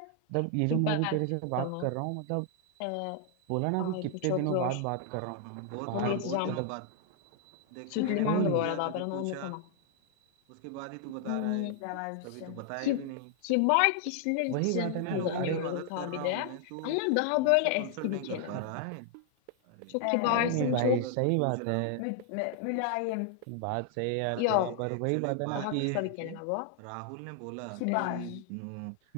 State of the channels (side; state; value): both; different; correlation 0.00